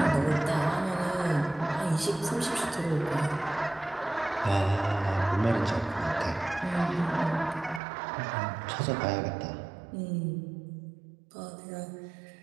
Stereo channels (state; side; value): drops out; left; at 7.8 s